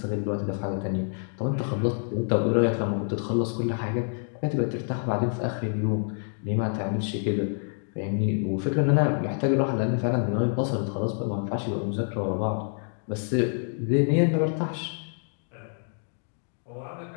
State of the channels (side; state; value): right; silent; 58 dB below the other